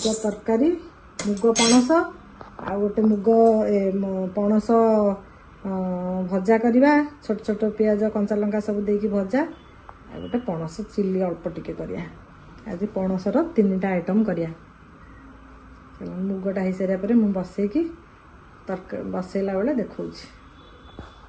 ତରକାରୀ, ମୁଗ ପଣସ ଆଉ ଗୋଟେ ମୁଗ ପଣସ ଭଜା କରିବା। ଛୋଟ ଛୋଟ ପିଆଜ କଞ୍ଚା ଲଙ୍କା ସବୁ ଦେଇକି ଭଜା, ଆଉ ଗୋଟେ ପଣସ ଚିଲି ଅଳ୍ପ ଟିକେ କରିବା। ଆଜି ପଣସର 3ଟା ଆଇଟମ୍ କରିବା। ମୁଗଟା ହେଇସାରିବା ପରେ ମୁଁ ବସେଇକି ବସେଇଲା ବେଳେ ଦେଖଉଛି।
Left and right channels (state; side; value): identical; both; correlation 1.00